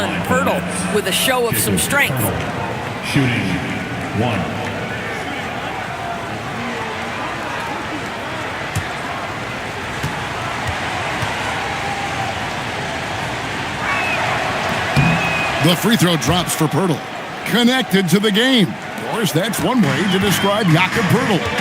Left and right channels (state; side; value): identical; both; correlation 1.00